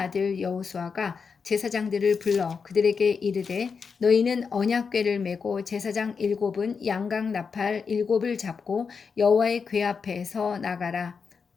여호수아가 제사장들을 불러 그들에게 이르되 너희는 언약궤를 메고 제사장 7은 양각 나팔 7을 잡고 여호와의 궤 앞에서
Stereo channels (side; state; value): right; quieter; 5.6 dB